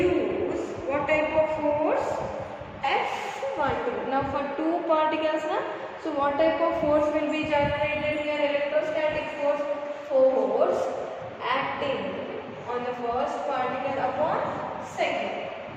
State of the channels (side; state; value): both; identical; correlation 1.00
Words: what type of force? F12. Now for two particles, so what type of force will be generated here? Electrostatic force acting on the first particle upon second.